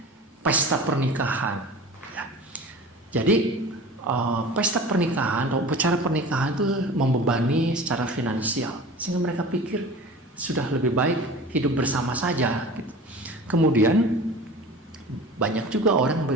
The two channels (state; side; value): normal; both; correlation 0.38